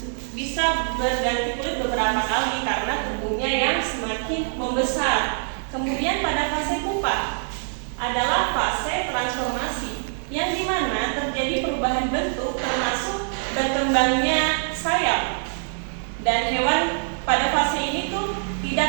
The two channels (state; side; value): silent; left; digital silence